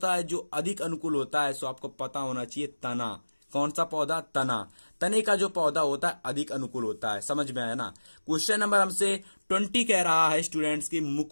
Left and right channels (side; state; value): both; inverted; correlation -1.00